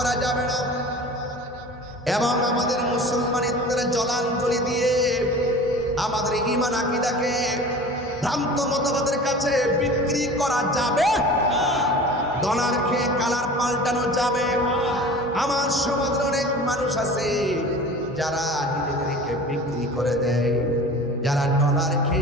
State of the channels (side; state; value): both; normal; correlation 0.39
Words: যাবে না। এবং আমাদের মুসলমানিত্বের জলাঞ্জলি দিয়ে আমাদের ঈমান আকীদাকে ভ্রান্ত মতবাদের কাছে বিক্রি করা যাবে? ডলার খেয়ে কালার পাল্টানো যাবে? আমার সমাজের অনেক মানুষ আছে যারা নিজেদেরকে বিক্রি করে দেয়, যারা ডলার